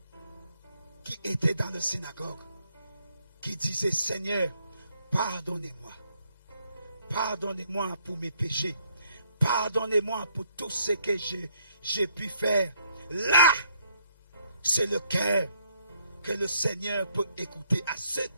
qui étaient dans la synagogue, qui disaient: Seigneur, pardonnez-moi. Pardonnez-moi pour mes péchés. Pardonnez-moi pour tout ce que j'ai pu faire. Là, c'est le cœur que le Seigneur peut écouter. À ce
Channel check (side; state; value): both; inverted; correlation -0.70